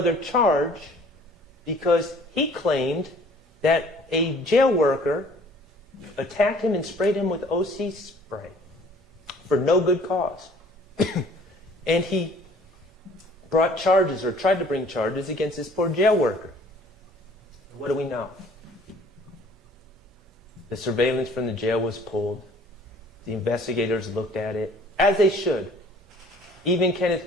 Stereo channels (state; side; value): normal; both; correlation 0.53